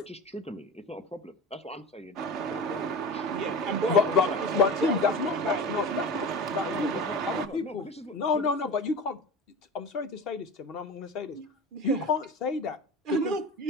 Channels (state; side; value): normal; both; correlation 0.30